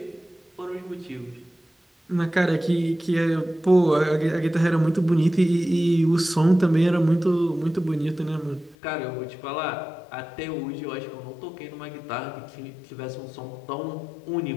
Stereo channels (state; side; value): drops out; right; at 8.8 s